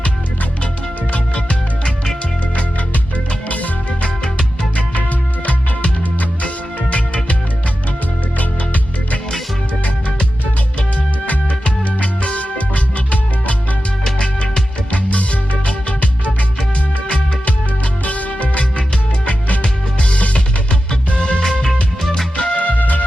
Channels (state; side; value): normal; both; correlation 0.93